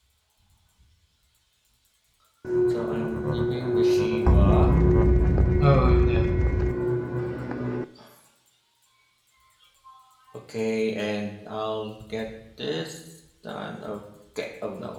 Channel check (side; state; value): both; identical; correlation 1.00